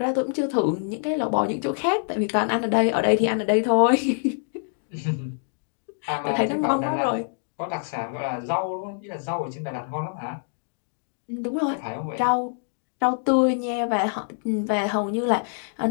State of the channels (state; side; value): silent; right; digital silence